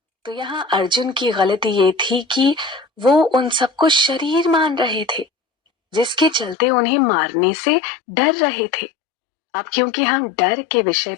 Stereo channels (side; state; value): right; drops out; at 6.6 s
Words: तो यहाँ अर्जुन की गलती ये थी कि वो उन सबको शरीर मान रहे थे, जिसके चलते उन्हें मारने से डर रहे थे। अब क्योंकि हम डर के विषय